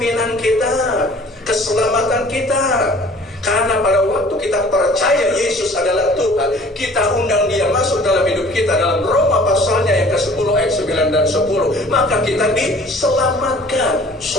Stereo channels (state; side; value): normal; both; correlation 0.50